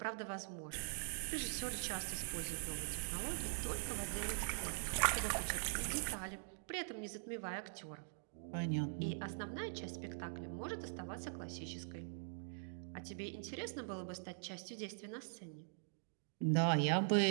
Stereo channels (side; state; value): left; silent; digital silence